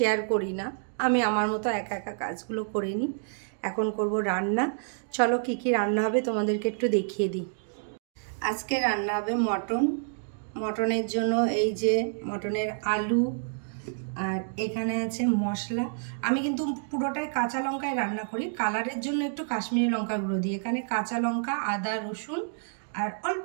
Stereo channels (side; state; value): left; silent; digital silence